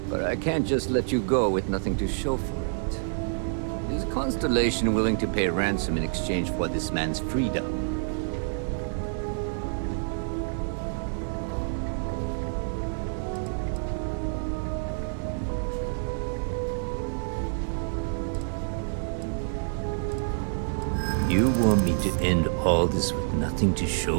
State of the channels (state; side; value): silent; left; 60 dB below the other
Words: But I can't just let you go with nothing to show for it. Is Constellation willing to pay ransom in exchange for this man's freedom? You want me to end all this with nothing to